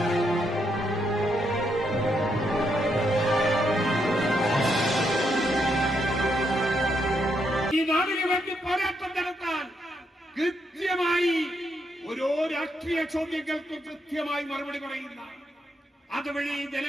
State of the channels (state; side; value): normal; both; correlation 0.78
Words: ഈ നാടിന് വേണ്ടി പോരാട്ടം നടത്താൻ കൃത്യമായി ഓരോ രാഷ്ട്രീയ ചോദ്യങ്ങൾക്ക് കൃത്യമായി മറുപടി പറയുന്ന, അതുവഴി